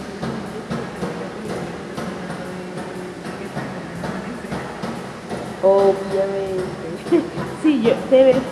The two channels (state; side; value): identical; both; correlation 1.00